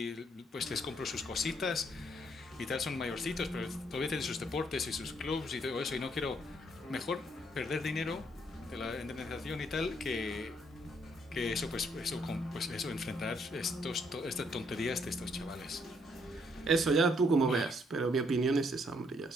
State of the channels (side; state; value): both; normal; correlation 0.71